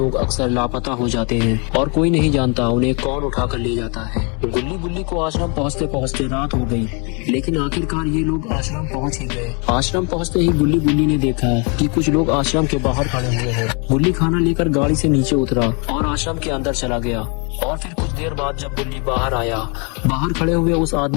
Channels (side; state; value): right; quieter; 34.1 dB